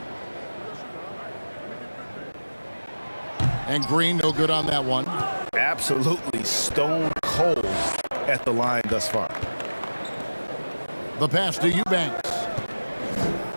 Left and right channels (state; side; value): inverted; both; correlation -1.00